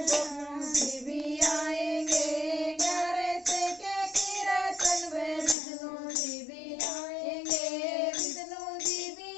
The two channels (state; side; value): drops out; right; at 5.6 s